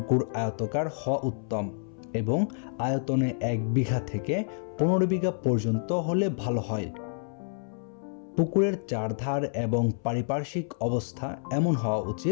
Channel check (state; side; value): silent; right; 59 dB below the other